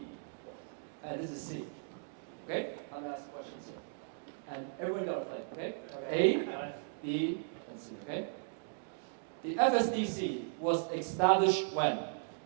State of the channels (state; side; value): silent; left; digital silence